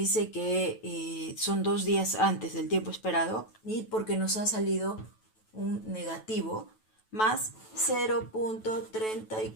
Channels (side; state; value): right; late; 9.2 ms